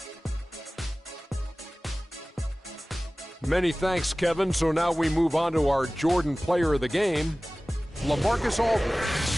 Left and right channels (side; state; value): both; normal; correlation 0.98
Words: Many thanks, Kevin. So now we move on to our Jordan player of the game, LaMarcus